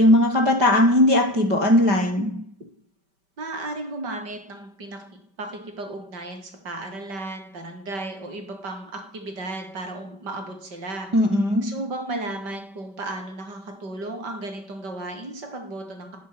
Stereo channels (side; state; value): left; late; 5.2 ms